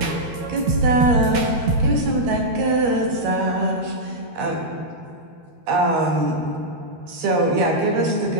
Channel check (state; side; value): late; left; 12 ms